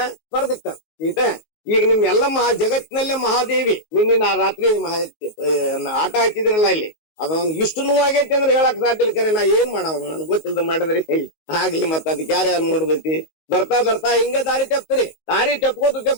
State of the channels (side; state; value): right; late; 19 ms